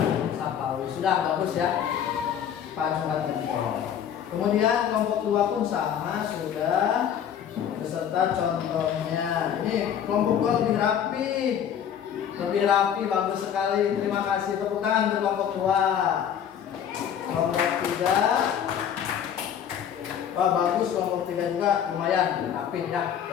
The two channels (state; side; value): quieter; right; 9.0 dB